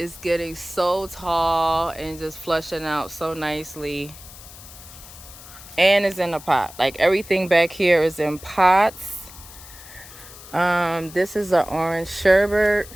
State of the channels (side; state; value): left; noise; hiss, 17 dB below the sound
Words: getting so tall and just flushing out so nicely. And it's in a pot. Like everything back here is in pots. This is an orange sherbet